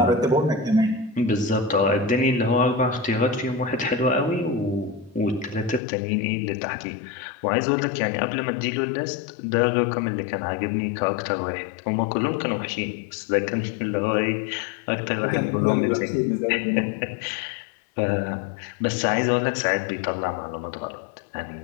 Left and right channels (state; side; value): drops out; right; at 5.8 s